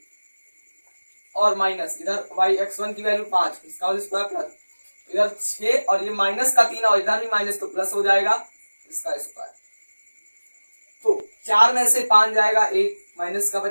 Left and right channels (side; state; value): both; inverted; correlation -1.00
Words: और माइनस इधर x1 की वैल्यू 5, इसका होल स्क्वायर प्लस इधर 6, और ये माइनस का 3 और इधर भी माइनस, तो प्लस हो जाएगा इसका स्क्वायर। तो 4 में से 5 जाएगा, 1 माइनस का